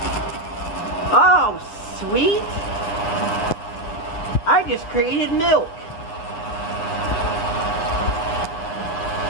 Oh, sweet! I just created milk.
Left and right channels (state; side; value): late; right; 9.7 ms